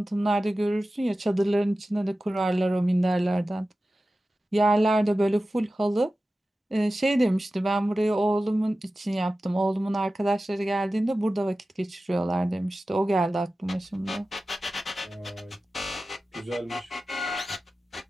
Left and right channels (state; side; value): normal; both; correlation 0.95